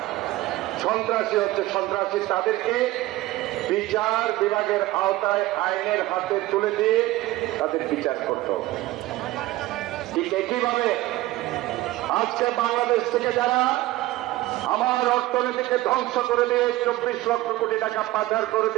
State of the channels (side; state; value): left; quieter; 17.4 dB